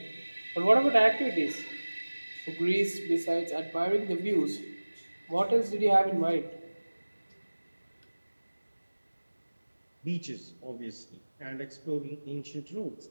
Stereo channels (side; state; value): both; inverted; correlation -1.00